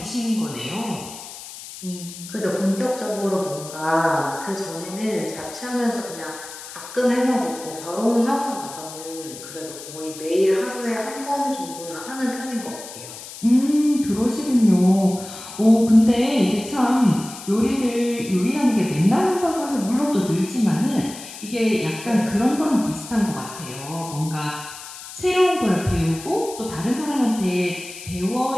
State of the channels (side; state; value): left; noise; hiss, 13 dB below the sound